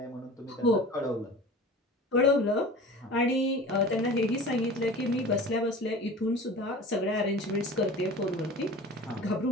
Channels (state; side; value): normal; both; correlation 0.38